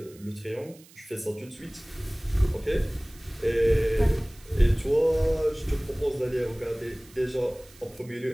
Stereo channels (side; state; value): right; noise; hiss, 24 dB below the sound